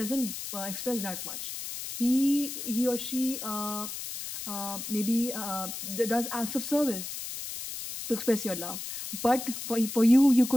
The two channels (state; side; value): noise; left; hiss, 7 dB below the sound